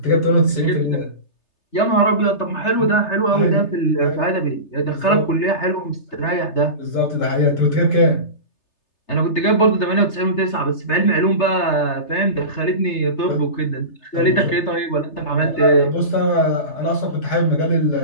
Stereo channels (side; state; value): right; late; 3.3 ms